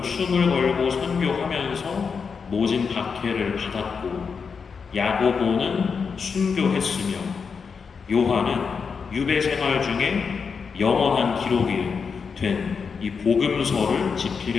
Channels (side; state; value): right; quieter; 5.7 dB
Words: 걸고 선교하면서 모진 박해를 받았고, 야고보는 순교했으며 요한은 유배 생활 중에 영원한 기록이 된 이 복음서를